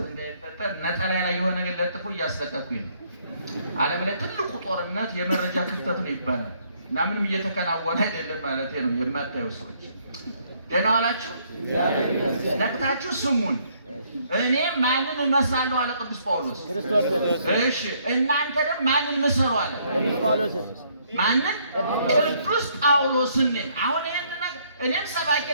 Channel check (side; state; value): both; inverted; correlation -0.67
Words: እንዳይፈጠር ነጠላ ላይ የሆነ ነገር ለጥፎ እያስለቀኩኝ ነው። ዓለም ላይ ትልቁ ጦርነት የመረጃ ክፍተት ነው ይባላል እና ምንም እየተከናወነ አይደለም ማለት ነው። የማታዩ ሰዎች ደህና ዋላችሁ? ነቅታችሁ ስሙን። እኔ ማንን እመስላለሁ አለ ቅዱስ ጳውሎስ። እሺ እናንተ ደግሞ ማንን ምሰሉ አለ ቅዱስ ጳውሎስ። ማንን? ቅዱስ ጳውሎስን። አሁን ይሄን ነገር እኔም ሰባኪ